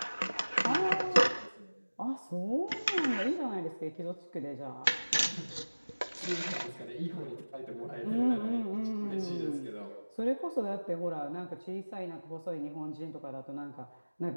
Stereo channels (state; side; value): inverted; both; correlation -1.00